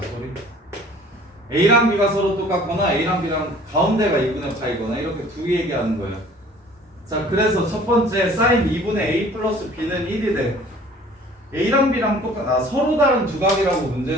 소리. A랑 B가 서로 똑같거나 A랑 B랑 가운데가 2분의 파이거나 이렇게 두 개 얘기하는 거예요. 자, 그래서 첫 번째 사인 2분의 A 플러스 B는 1이 돼. A랑 B랑 서로 다른 두 각이라고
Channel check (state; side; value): normal; both; correlation 0.51